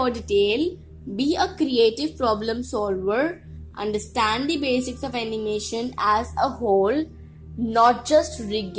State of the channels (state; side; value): identical; both; correlation 1.00